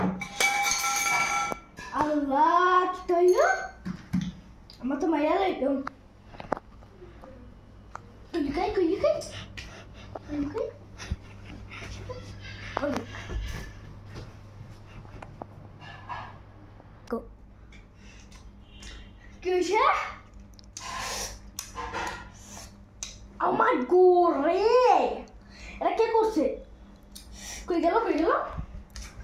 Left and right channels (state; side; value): identical; both; correlation 1.00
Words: আল্লাহ, কি তৈল? আমার তো মাইয়া লাগলো। লুকাই কই, লুকাই লুকাই। কি হয়েছে? আমার গোরে, এটা কে করছে? কই গেল, কই গেল?